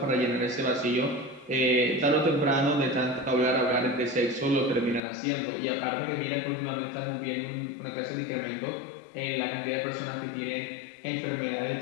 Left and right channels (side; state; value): right; drops out; at 5.0 s